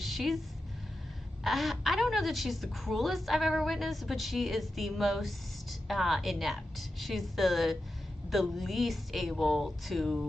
I don't know that she's the cruelest I've ever witnessed, but she is the most inept. She's the least able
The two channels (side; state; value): both; normal; correlation 0.90